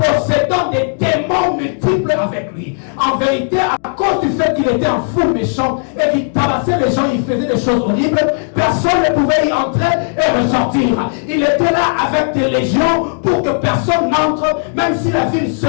des démons multiples avec lui. En vérité, à cause du fait qu'il était un fou méchant et qu'il tabassait les gens, il faisait des choses horribles, personne ne pouvait y entrer et ressortir. Il était là avec des légions pour que personne n'entre, même si la ville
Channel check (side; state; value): right; silent; 69 dB below the other